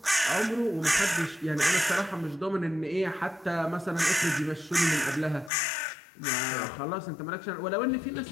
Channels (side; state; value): right; drops out; at 5.5 s